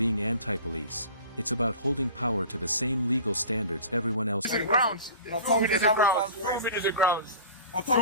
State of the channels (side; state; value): both; inverted; correlation -0.40